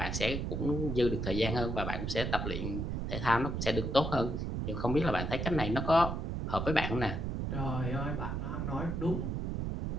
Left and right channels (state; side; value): noise; right; rumble, 2 dB below the sound